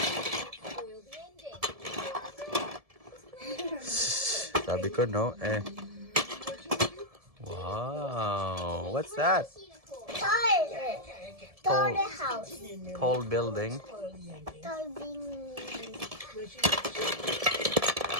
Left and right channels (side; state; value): left; late; 1.7 ms